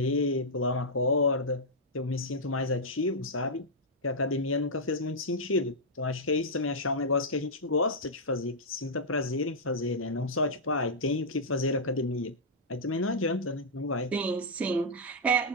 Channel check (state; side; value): normal; both; correlation -0.08